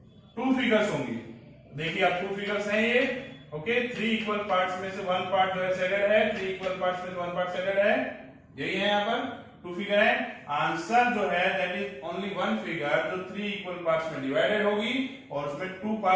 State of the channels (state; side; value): identical; both; correlation 1.00